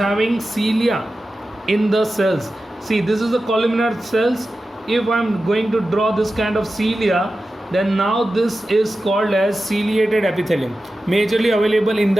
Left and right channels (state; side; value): normal; both; correlation 0.93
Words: cilia in the cells. See, this is the columnar cells. If I'm going to draw this kind of cilia, then now this is called as ciliated epithelium, majorly available in